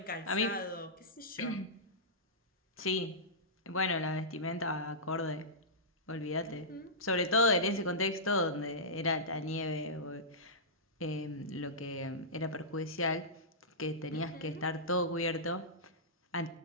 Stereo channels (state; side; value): normal; both; correlation -0.16